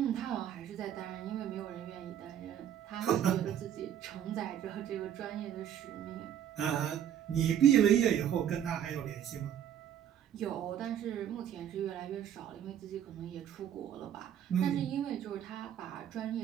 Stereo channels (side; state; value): left; quieter; 10.0 dB